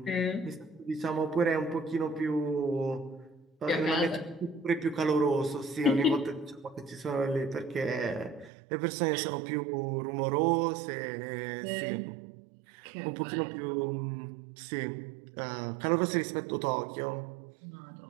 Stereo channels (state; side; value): drops out; left; at 8.5 s